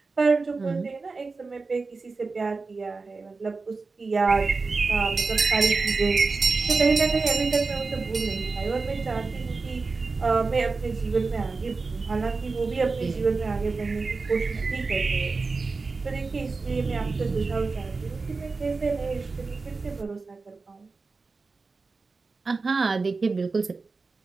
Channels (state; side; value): quieter; left; 4.1 dB